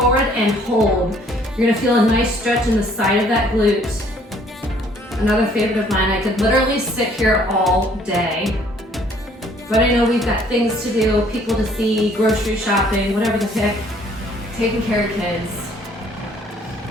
and hold. You're gonna feel a nice stretch in the side of that glute. Another favorite of mine, I could literally sit here all day, but I know we've got things to do, people to see, grocery shopping, whatever the heck, taking care of kids.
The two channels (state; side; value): normal; both; correlation 0.60